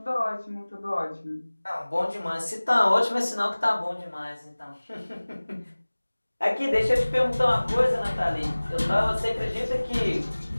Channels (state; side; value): inverted; both; correlation -1.00